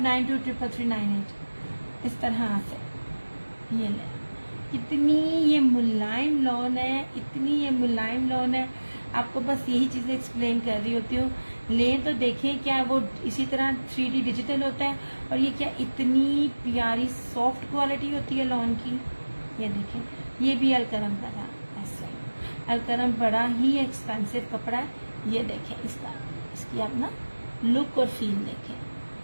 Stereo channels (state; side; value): inverted; both; correlation -1.00